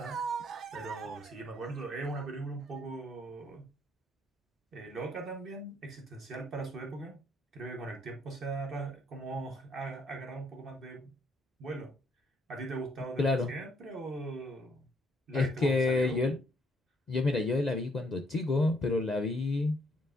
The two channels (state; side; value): normal; both; correlation 0.69